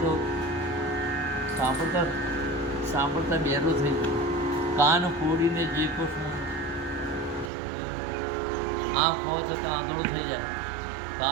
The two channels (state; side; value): drops out; left; at 7.5 s